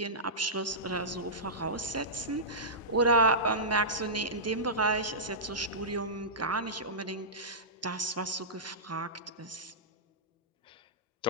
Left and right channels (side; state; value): both; normal; correlation -0.16